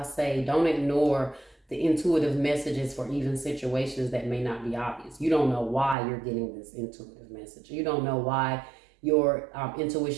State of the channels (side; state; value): left; drops out; at 6.0 s